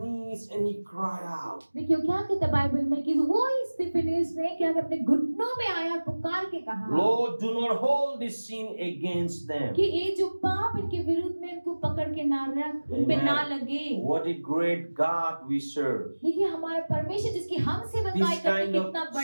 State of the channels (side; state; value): both; inverted; correlation -1.00